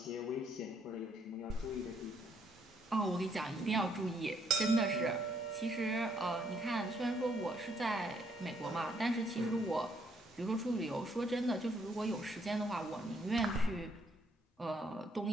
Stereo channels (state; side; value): normal; both; correlation 0.71